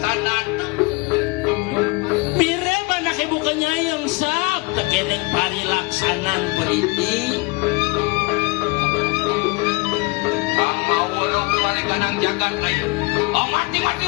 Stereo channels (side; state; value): right; quieter; 26.7 dB